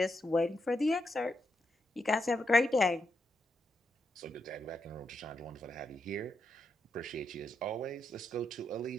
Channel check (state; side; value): normal; both; correlation 0.82